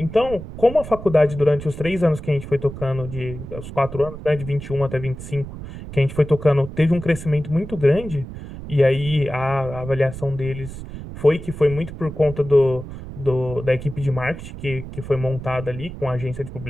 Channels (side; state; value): right; noise; rumble, 11 dB below the sound